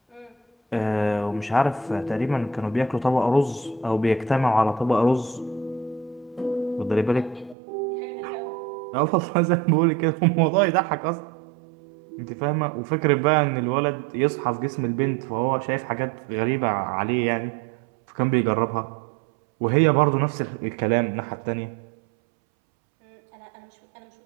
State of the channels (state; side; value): drops out; left; at 7.6 s